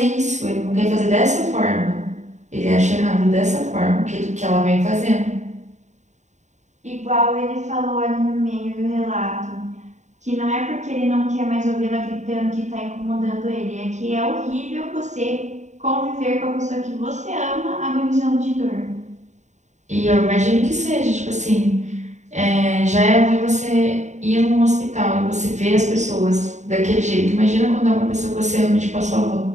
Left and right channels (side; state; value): left; late; 0.34 ms